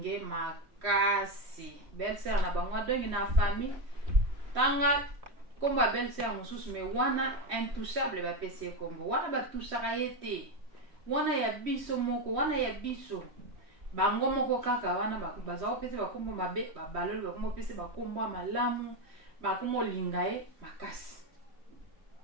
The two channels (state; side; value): late; left; 3.1 ms